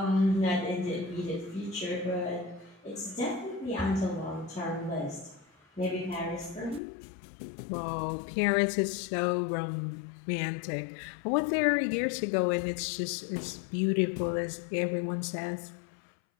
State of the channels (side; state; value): right; drops out; at 6.8 s